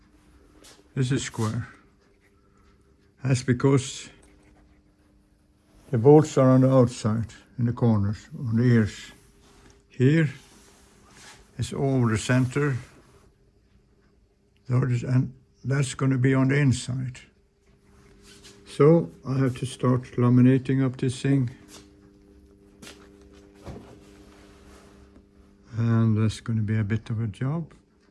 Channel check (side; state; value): both; identical; correlation 1.00